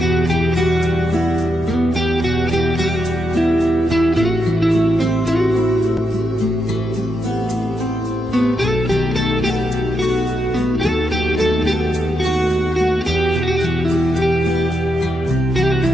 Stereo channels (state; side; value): normal; both; correlation 0.83